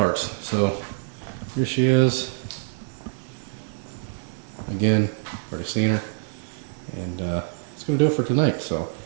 So here she is. Again, already seen her, and it's going to do it for tonight. So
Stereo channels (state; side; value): silent; left; digital silence